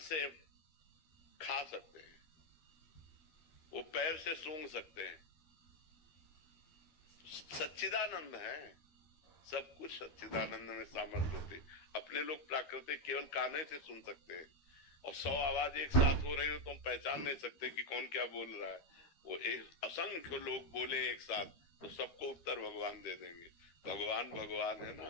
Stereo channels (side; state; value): right; late; 13 ms